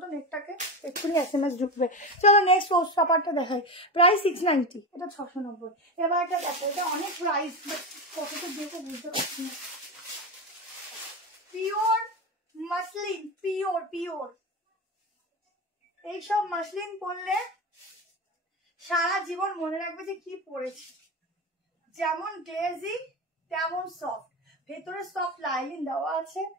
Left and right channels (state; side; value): normal; both; correlation 0.20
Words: তো, নেটটাকে এক্ষুনি SMS ঢুকবে। চলো নেক্সট পোস্ট পেপারটা দেখাই, প্রাইস 690, এটা 690। এবার একটা দেখো, এটা অনেক প্রাইস, বাট কতটা দেবো বুঝতে পারছি না। পিওর মাসলিন, পিওর পিওর, এইসব মাসলিন পরলে সারা জীবন মনে রাখবে যে কি পরেছি। যেমন গ্লেজি তেমন সফট, ভেতরে সফট লাইনিং দেওয়া আছে।